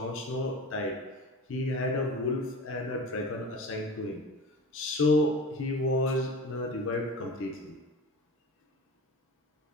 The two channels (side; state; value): both; normal; correlation 0.34